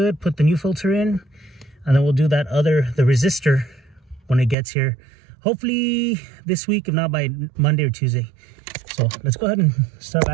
put the new filter in, and then we'll do the resistor when it gets here. Hopefully this week, if not by Monday or Tuesday. So let's go ahead and start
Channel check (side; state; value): left; drops out; at 4.5 s